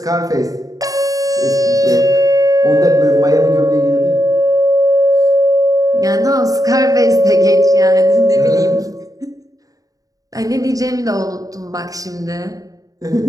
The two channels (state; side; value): late; left; 0.17 ms